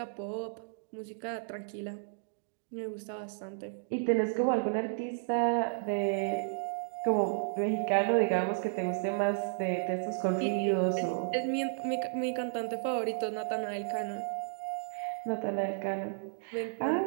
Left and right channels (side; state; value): left; silent; digital silence